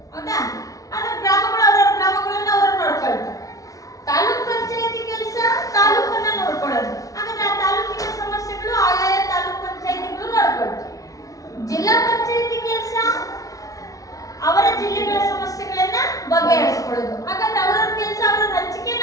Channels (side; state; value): right; late; 0.17 ms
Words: ಹೌದಾ? ಆದ್ರೆ ಗ್ರಾಮಗಳು ಅವರವರ ಗ್ರಾಮಗಳನ್ನ ಅವರು ನೋಡ್ಕೊಳ್ತಾರೆ. ತಾಲೂಕ್ ಪಂಚಾಯತಿ ಕೆಲಸ ತಾಲೂಕನ್ನ ನೋಡ್ಕೊಳ್ಳೋದು. ಹಾಗಾದ್ರೆ ಆ ತಾಲೂಕಿನ ಸಮಸ್ಯೆಗಳು ಆಯಾಯ ತಾಲೂಕ್ ಪಂಚಾಯತಿಗಳು ನೋಡ್ಕೊಳ್ತಾರೆ. ಜಿಲ್ಲಾ ಪಂಚಾಯತಿ ಕೆಲಸ ಅವರ ಜಿಲ್ಲೆಗಳ ಸಮಸ್ಯೆಗಳನ್ನ ಬಗೆಹರಿಸಿಕೊಳ್ಳೋದು. ಹಾಗಾದ್ರೆ ಅವರವ್ರ ಕೆಲಸ ಅವರ